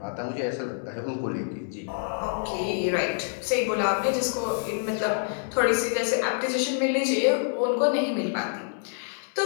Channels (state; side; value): silent; right; digital silence